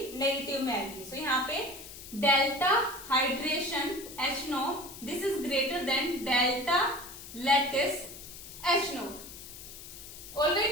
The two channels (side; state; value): left; noise; hiss, 14 dB below the sound